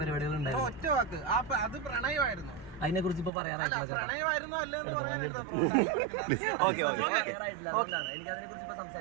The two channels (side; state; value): left; drops out; at 3.3 s